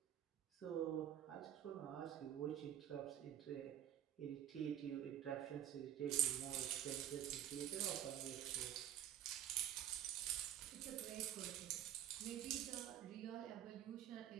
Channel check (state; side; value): quieter; left; 11.1 dB